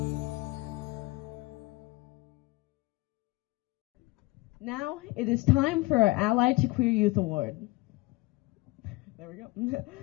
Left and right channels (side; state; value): right; quieter; 22.2 dB